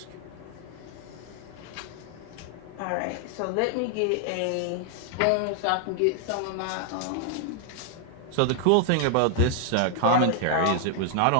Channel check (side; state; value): both; different; correlation 0.00